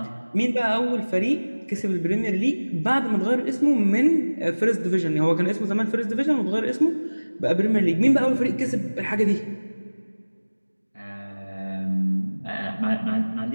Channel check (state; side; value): inverted; both; correlation -1.00